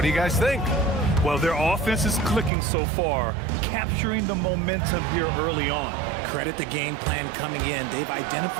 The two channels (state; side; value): drops out; left; at 2.5 s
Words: you guys think? Well, their offense is clicking so far, capturing the momentum here early on. Credit the game plan coming in. They've